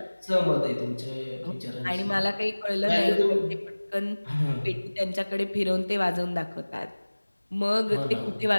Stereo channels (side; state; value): both; inverted; correlation -1.00